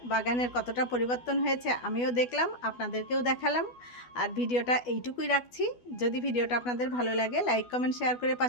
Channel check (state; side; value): late; right; 12 ms